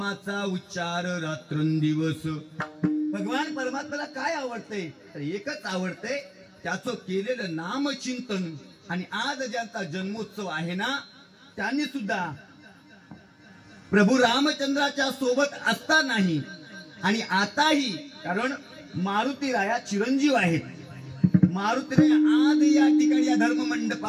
उच्चार रात्रंदिवस. भगवान परमात्म्याला काय आवडतंय तर एकच आवडतंय, त्याचं केलेलं नामचिंतन. आणि आज ज्यांचा जन्मोत्सव आहे ना, त्यांनी सुद्धा प्रभू रामचंद्राच्या सोबत असतानाही आणि आताही, कारण मारुतीराया चिरंजीव आहेत. मारुतीराया आज या ठिकाणी या धर्म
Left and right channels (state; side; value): identical; both; correlation 1.00